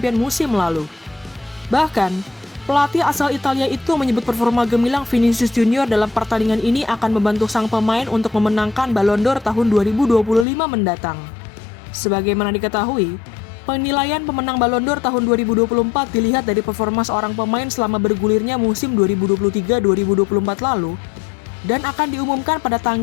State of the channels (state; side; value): drops out; right; at 10.5 s